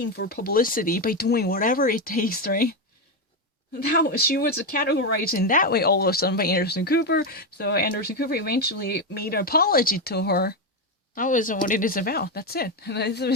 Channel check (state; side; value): normal; both; correlation 0.08